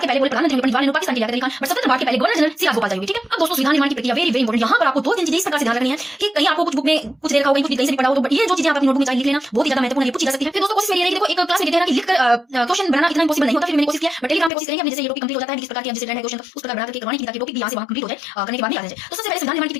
के पहले प्रधानमंत्री पंडित जवाहरलाल नेहरू, पाकिस्तान के लिया खान, बट स्वतंत्र भारत के पहले गवर्नर जनरल सी राजगोपाल चारी हुए। ठीक है, अब दोस्तों संविधान निर्माण की प्रक्रिया वेरी वेरी इंपॉर्टेंट। यहाँ पर आपको 2-3 चीजें इस प्रकार से ध्यान रखनी है कि कहीं आपको कुछ बुक में कुछ दे रखा होगा, कुछ कहीं से भी पढ़ा हो, तो ये जो चीजें आप अपनी नोटबुक में चाहिए लिख लेना, बहुत ही ज्यादा महत्वपूर्ण है, पूछी जा सकती है। फिर दोस्तों कोशिश मेरी रहेगी, देखो एक क्लास में कहते हैं ना कि लिखकर क्वेश्चन बनाना इतना इंपॉसिबल नहीं होता, फिर मैंने कोशिश किया, बट टेलीग्राम पे कोशिश करेंगे, जैसे ये टॉपिक कंप्लीट हो जाता है, किस प्रकार की जैसे है क्वेश्चन उस प्रकार बना करके करवाने की, ताकि टॉपिक भी यहाँ से वहाँ कंप्लीट हो जाए, करने के बाद नहीं आ जाए। तो सबसे पहले संविधान निर्माण की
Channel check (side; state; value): right; drops out; at 14.5 s